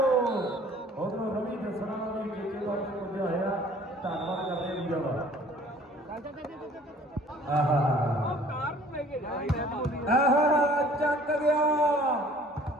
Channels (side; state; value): both; normal; correlation 0.52